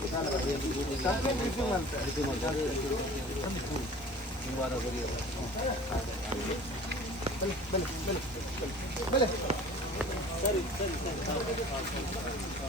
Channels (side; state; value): both; normal; correlation 0.44